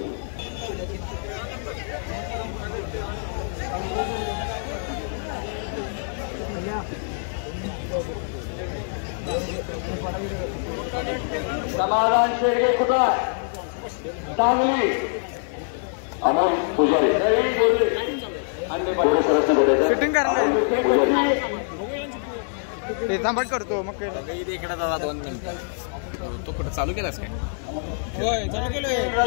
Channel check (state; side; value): silent; right; digital silence